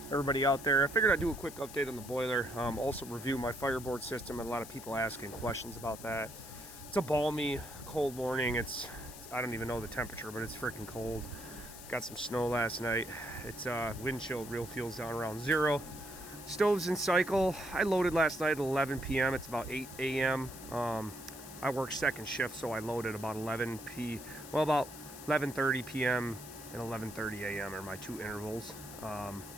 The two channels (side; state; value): left; noise; hiss, 14 dB below the sound